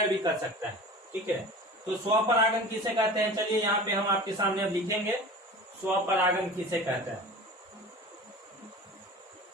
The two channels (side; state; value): both; normal; correlation 0.37